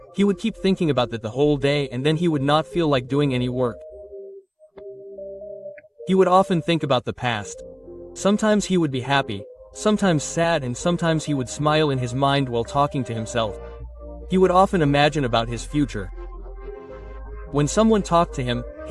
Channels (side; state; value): both; identical; correlation 1.00